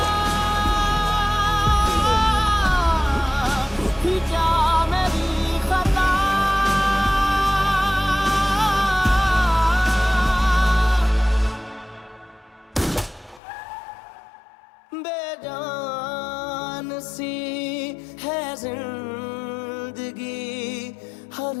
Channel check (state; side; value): drops out; right; at 13.4 s